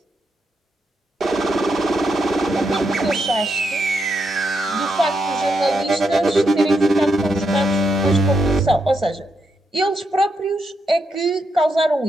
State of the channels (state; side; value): normal; both; correlation 0.82